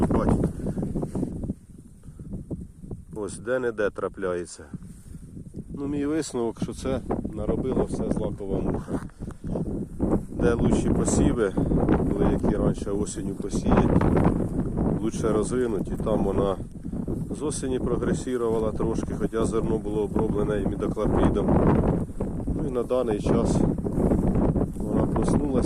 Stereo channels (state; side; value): identical; both; correlation 1.00